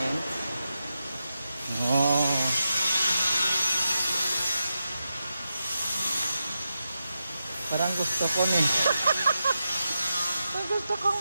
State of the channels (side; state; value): both; inverted; correlation -0.89